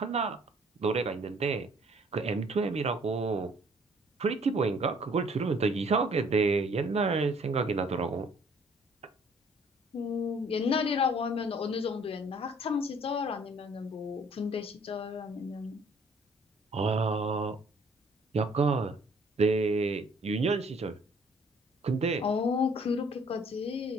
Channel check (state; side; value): normal; both; correlation 0.59